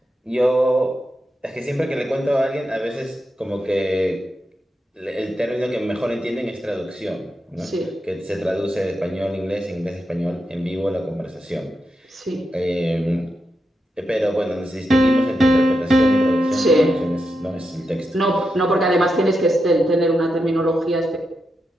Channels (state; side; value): normal; both; correlation 0.86